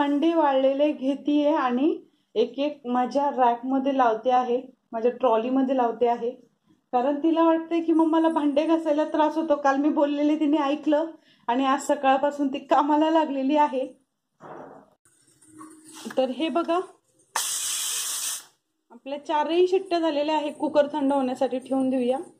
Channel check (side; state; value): both; identical; correlation 1.00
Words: वाळलेले घेतीये आणि एक एक माझ्या रॅक मध्ये लावते आहे, माझ्या ट्रॉली मध्ये लावते आहे। कारण तिला वाटते की मम्माला भांडे घासायला त्रास होतो। काल मी बोललेले तिने ऐकलं आणि आज सकाळपासून ती कामाला लागलेली आहे। तर हे बघा आपल्या 4ही शिट्ट्या झालेल्या आहे। कुकर थंड होण्यासाठी ठेवून देऊया।